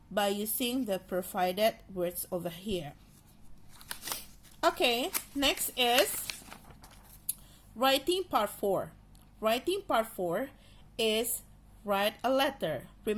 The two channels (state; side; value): identical; both; correlation 1.00